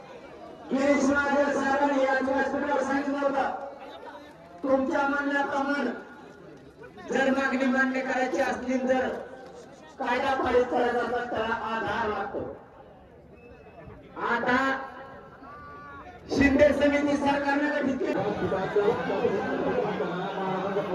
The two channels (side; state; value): both; identical; correlation 1.00